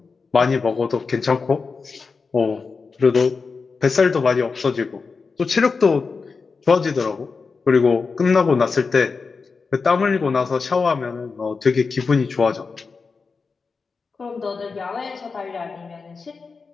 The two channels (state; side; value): quieter; right; 4.7 dB